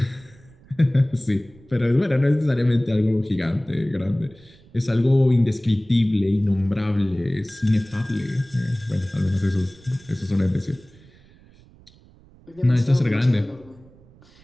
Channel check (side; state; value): right; noise; rumble, 26 dB below the sound